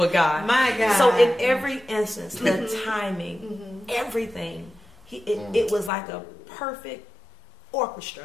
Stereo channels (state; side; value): drops out; right; at 5.9 s